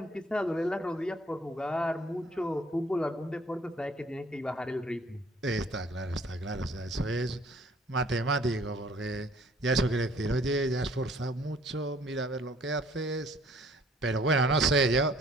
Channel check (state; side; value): normal; both; correlation 0.57